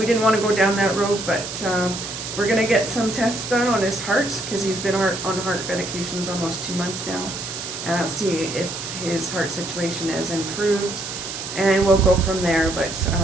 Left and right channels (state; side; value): noise; right; hiss, 7 dB below the sound